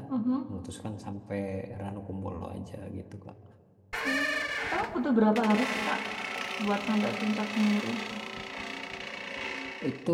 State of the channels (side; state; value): both; identical; correlation 1.00